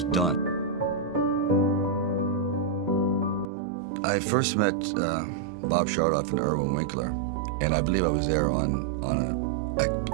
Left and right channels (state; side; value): drops out; left; at 3.5 s